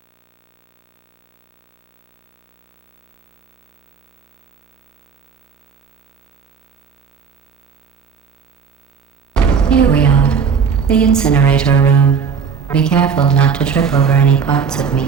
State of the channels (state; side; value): quieter; left; 6.3 dB